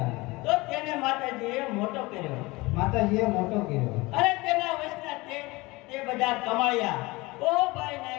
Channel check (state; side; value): quieter; right; 22.4 dB